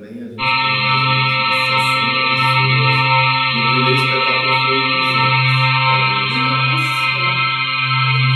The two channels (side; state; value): both; identical; correlation 1.00